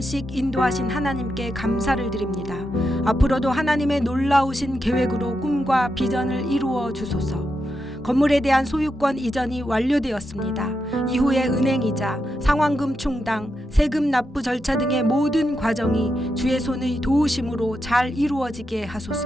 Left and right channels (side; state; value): both; normal; correlation 0.85